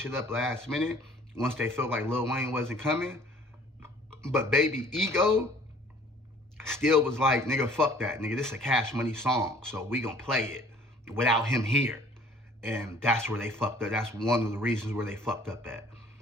it up last minute once they felt like Lil Wayne wasn't coming. But Baby Ego still was like, nigga, fuck that. Nigga, this is a CashMoney song, so we gonna play it without him here. And that's where they fucked up. That's one of the reasons where they fucked up at.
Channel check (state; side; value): normal; both; correlation 0.54